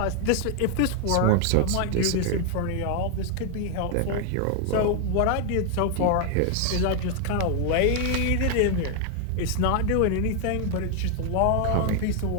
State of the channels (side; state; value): both; different; correlation 0.00